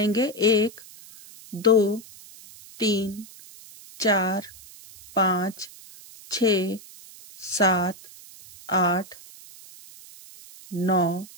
1 2 3 4 5 6 7 8 9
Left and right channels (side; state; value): right; noise; hiss, 20 dB below the sound